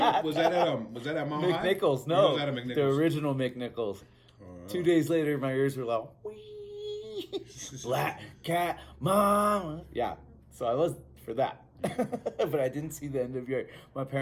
Was that at Mount High? McNichols? No, was that at McNichols? The original McNichols. 2 days later, my ears were like, wee, Black Cat Mama. Yeah, so I was for that, but I didn't see the NWA. My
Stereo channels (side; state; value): both; identical; correlation 1.00